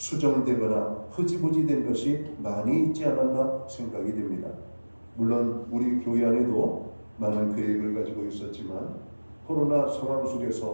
흐지부지 된 것이 많이 있지 않았나 생각이 됩니다. 물론 우리 교회 안에도 많은 계획을 가지고 있었지만 코로나 상황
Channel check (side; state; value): both; inverted; correlation -1.00